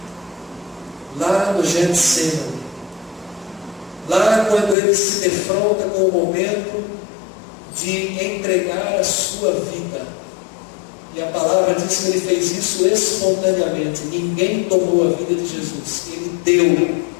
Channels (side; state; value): right; drops out; at 4.8 s